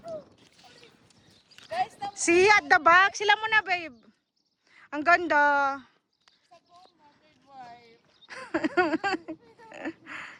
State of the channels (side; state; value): both; identical; correlation 1.00